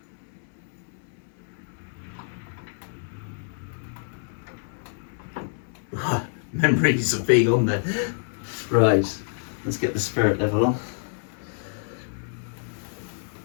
Memories of being on there. Right, let's get the spirit level on.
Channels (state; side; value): silent; right; digital silence